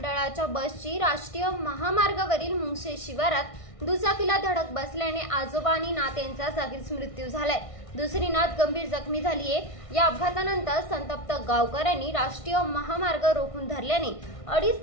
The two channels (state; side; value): late; right; 1.5 ms